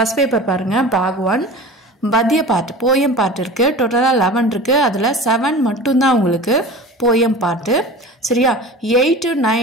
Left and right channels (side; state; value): both; normal; correlation 0.36